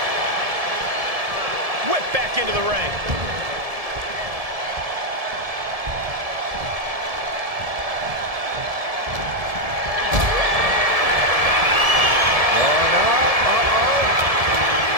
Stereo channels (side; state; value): left; late; 1.7 ms